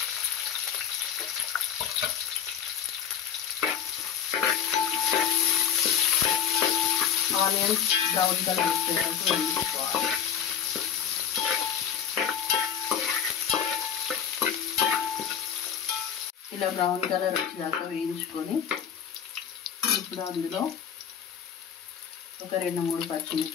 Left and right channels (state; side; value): quieter; right; 8.5 dB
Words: ఆనియన్స్ బ్రౌన్ కలర్ వచ్చేటట్టు వేయించుకోవాలి. ఇలా బ్రౌన్ కలర్ వచ్చేదాకా వేయించుకొని ఇప్పుడు అందులో ఒక 2-3